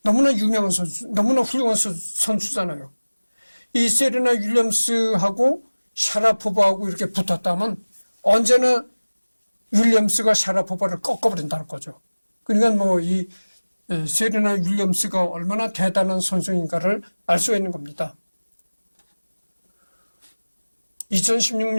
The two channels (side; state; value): both; inverted; correlation -1.00